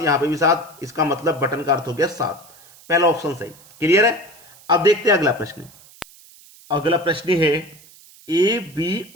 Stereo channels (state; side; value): noise; right; hiss, 24 dB below the sound